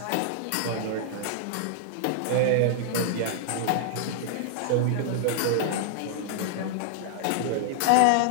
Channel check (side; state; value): both; different; correlation -0.01